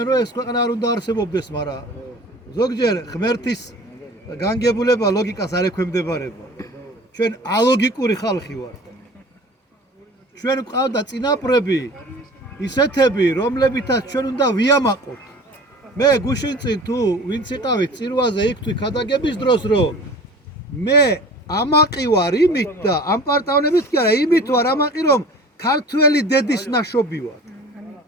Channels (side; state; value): both; normal; correlation 0.42